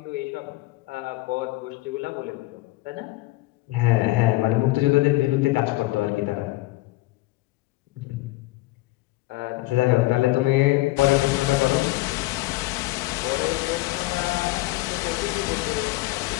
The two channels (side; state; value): right; quieter; 19.8 dB